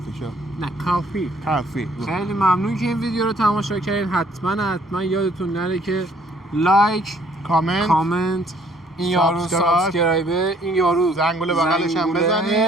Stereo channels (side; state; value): both; normal; correlation 0.61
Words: شاپ نه کافی. کافی. خیلی ممنون که این ویدیو رو تماشا کردین. حتما یادتون نره که لایک کامنت این یارو سابسکرایب این یارو زنگوله بغلش هم